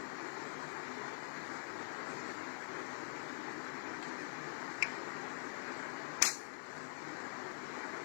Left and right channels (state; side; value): silent; right; digital silence